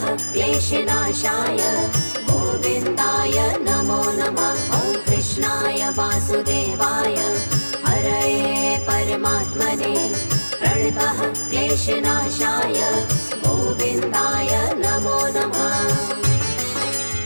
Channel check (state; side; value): inverted; both; correlation -1.00